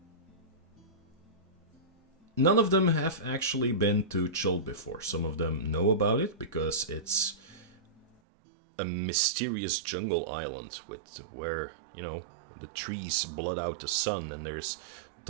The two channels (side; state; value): left; drops out; at 8.1 s